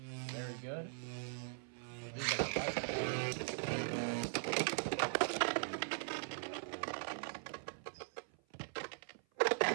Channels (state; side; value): silent; left; 51 dB below the other